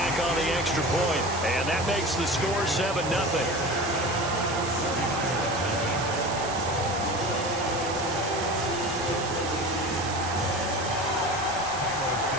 on the extra point, and that makes the score 7-0.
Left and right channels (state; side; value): noise; right; hiss, 8 dB below the sound